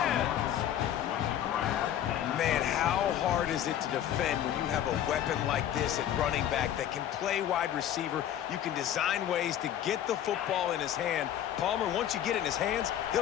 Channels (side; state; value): right; quieter; 10.9 dB